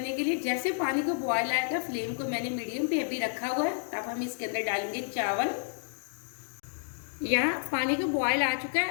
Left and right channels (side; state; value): right; silent; digital silence